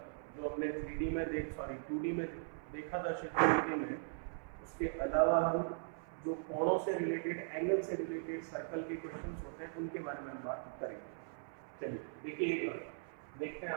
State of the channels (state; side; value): silent; left; 52 dB below the other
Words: जो हमने 2D में देखा था चित्र में, उसके अलावा हम जो कोणों से रिलेटेड, एंगल से रिलेटेड सर्कल के क्वेश्चंस होते हैं, उनके बारे में हम बात करेंगे। चलिए देखिए, एक बार देखते हैं